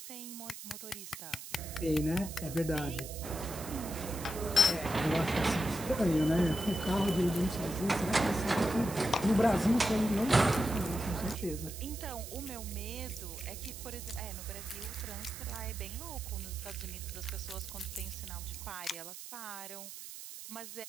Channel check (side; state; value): right; noise; hiss, 11 dB below the sound